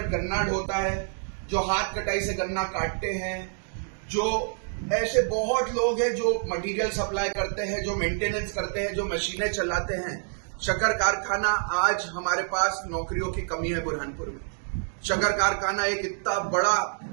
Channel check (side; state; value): left; silent; 60 dB below the other